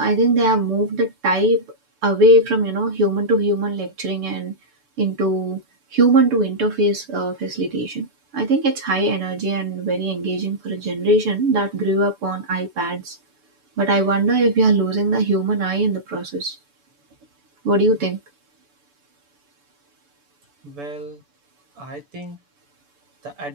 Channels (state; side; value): late; left; 7.0 ms